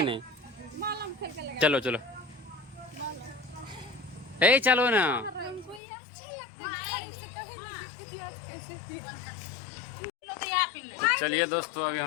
नहीं? चलो चलो, ए चलो ना। हमको ये अच्छा लगता है, गाड़ी से कभी नहीं गिरती थी, आज कैसे गिरी। तो चलिए दोस्तों अभी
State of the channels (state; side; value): drops out; right; at 5.8 s